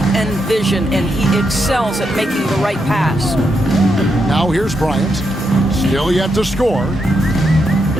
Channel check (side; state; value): both; normal; correlation 0.82